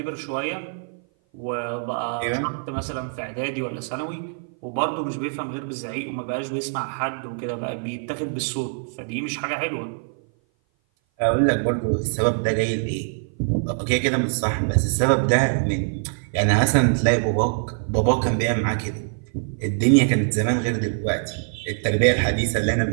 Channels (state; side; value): silent; left; 57 dB below the other